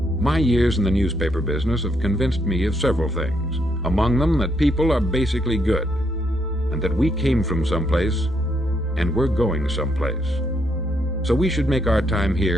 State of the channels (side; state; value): both; normal; correlation 0.75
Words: "My years in the newspaper business have convinced me of several things, among them that people are basically good, and that we came from someplace, and we're going someplace. So we should make our time